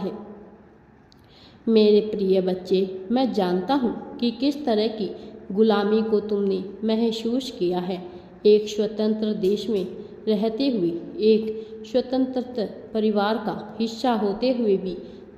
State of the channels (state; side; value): identical; both; correlation 1.00